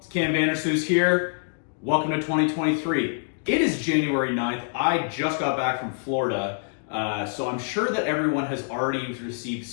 Cam Vandersloot here. Welcome to 2023. It is January 9th. I just got back from Florida, so I'm sure that everyone has already received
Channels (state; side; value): silent; right; digital silence